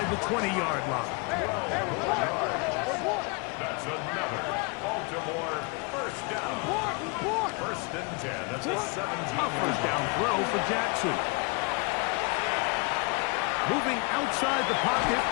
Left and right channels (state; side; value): quieter; right; 31.2 dB